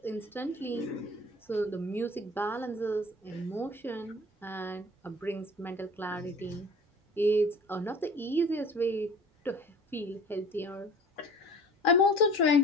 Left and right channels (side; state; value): both; normal; correlation 0.45